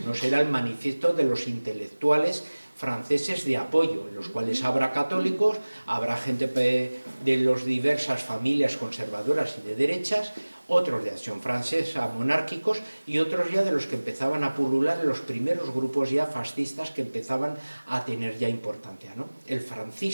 Uno será el manifiesto de los intelectuales franceses de apoyo, en los cuales habrá católicos, habrá gente de las diversas familias conservadoras y de derechas, otros de Acción Francesa monárquicos y otros ya de los que empezaban a pulular los primeros grupos ya fascistas que empezaban a tener ya importancia, ¿no? El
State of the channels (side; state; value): both; inverted; correlation -1.00